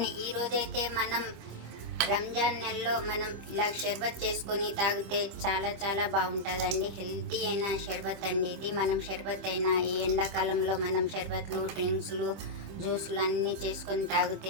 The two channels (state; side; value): late; left; 26 ms